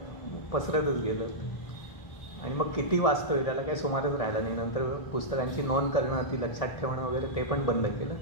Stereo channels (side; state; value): right; late; 1.6 ms